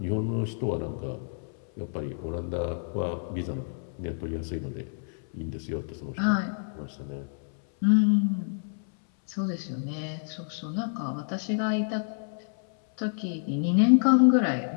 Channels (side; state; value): right; silent; 59 dB below the other